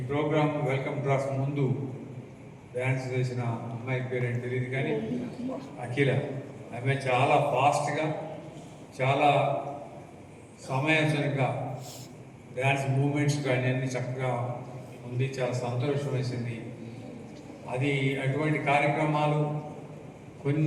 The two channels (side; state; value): both; identical; correlation 1.00